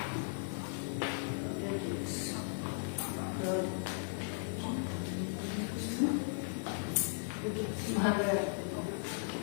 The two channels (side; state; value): right; silent; digital silence